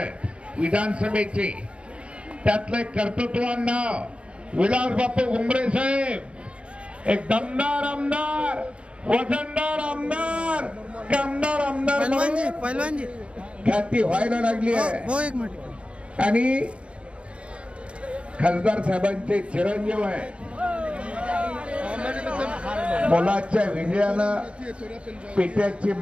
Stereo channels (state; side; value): late; left; 0.059 ms